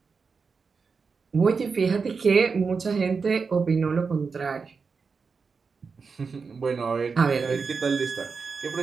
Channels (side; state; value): left; quieter; 5.1 dB